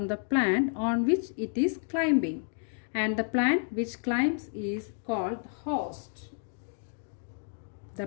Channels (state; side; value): silent; right; 57 dB below the other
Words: the plant on which it is climbing. And the plant which climbs is called the host. The